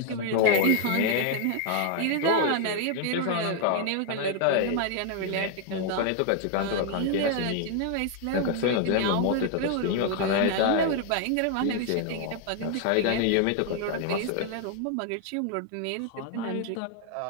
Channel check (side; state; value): both; different; correlation 0.00